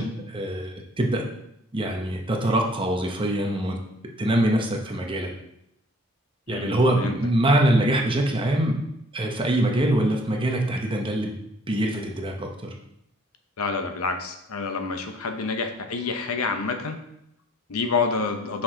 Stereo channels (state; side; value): normal; both; correlation 0.59